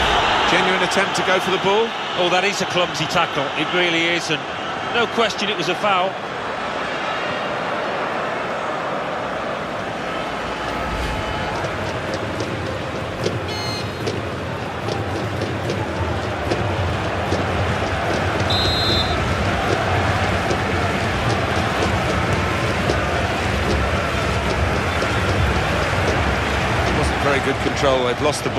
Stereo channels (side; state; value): both; identical; correlation 1.00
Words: Genuine attempt to go for the ball. Oh, that is a clumsy tackle, it really is, and no question it was a foul. Very good control, they've lost the